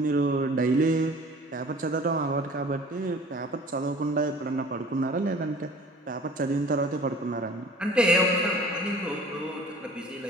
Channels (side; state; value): both; normal; correlation 0.47